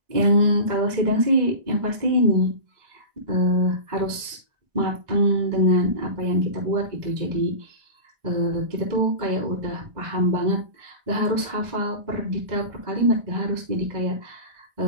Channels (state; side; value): late; left; 2.0 ms